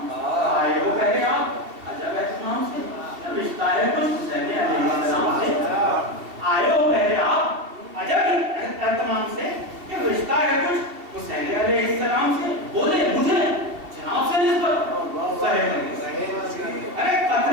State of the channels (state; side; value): late; left; 2.7 ms